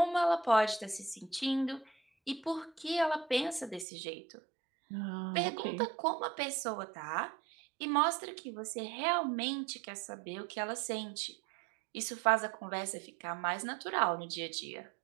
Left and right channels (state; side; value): drops out; left; at 3.9 s